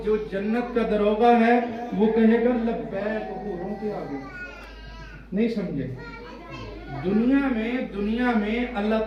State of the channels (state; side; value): identical; both; correlation 1.00